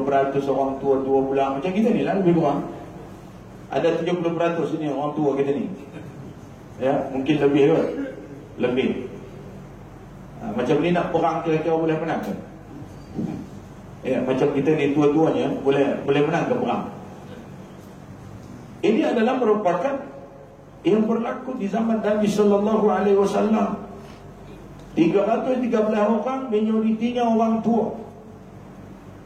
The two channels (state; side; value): identical; both; correlation 1.00